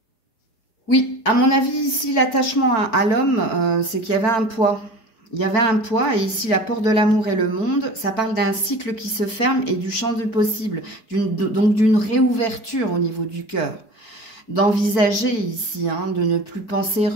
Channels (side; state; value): right; late; 4.5 ms